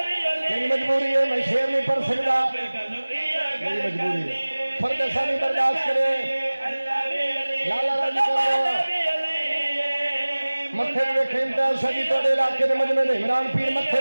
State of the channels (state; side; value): inverted; both; correlation -1.00